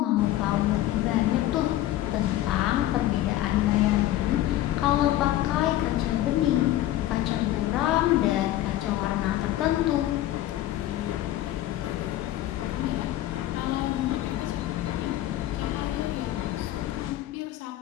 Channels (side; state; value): right; quieter; 14.2 dB